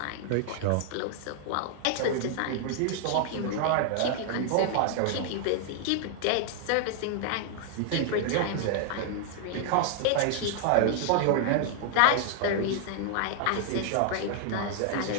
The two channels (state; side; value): different; both; correlation 0.00